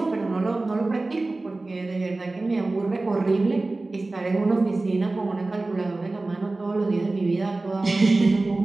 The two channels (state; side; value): quieter; left; 3.1 dB